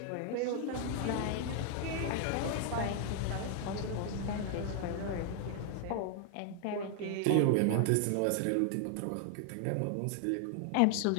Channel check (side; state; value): both; different; correlation 0.00